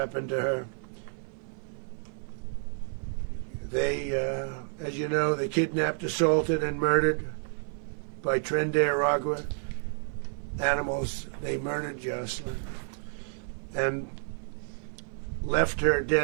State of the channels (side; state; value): left; silent; 58 dB below the other